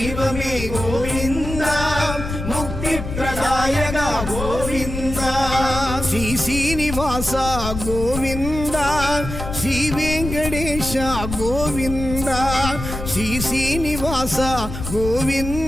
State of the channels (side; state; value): left; noise; rumble, 7 dB below the sound